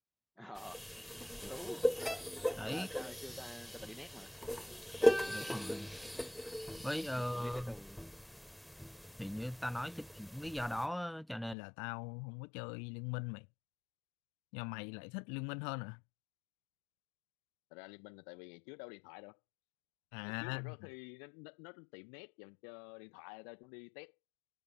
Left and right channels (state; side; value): drops out; right; at 11.6 s